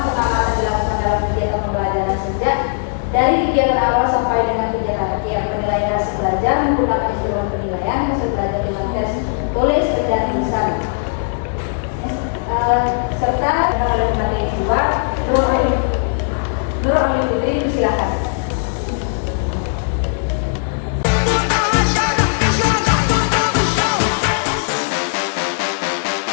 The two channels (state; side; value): silent; right; 57 dB below the other